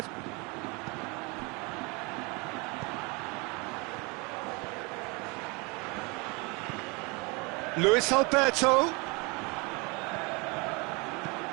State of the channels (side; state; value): left; quieter; 28.8 dB